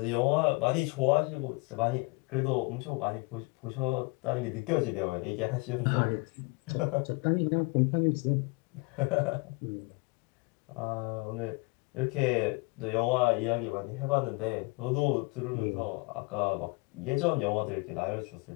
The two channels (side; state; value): right; quieter; 28.8 dB